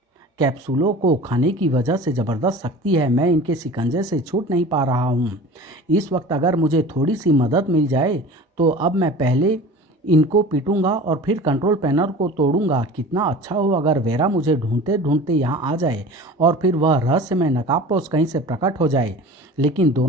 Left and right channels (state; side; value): normal; both; correlation 0.39